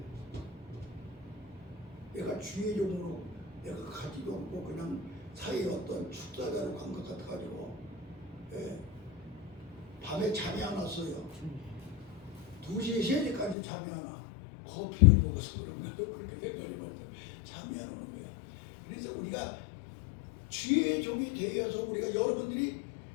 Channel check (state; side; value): drops out; right; at 13.6 s